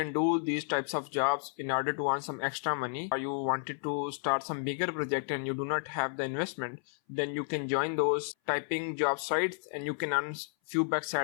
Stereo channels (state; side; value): silent; right; 56 dB below the other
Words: do these types of jobs in order to earn some extra money. Or you wanted to start some bigger project and you do not have the investment, then you can join those typing job sites and you can earn few bucks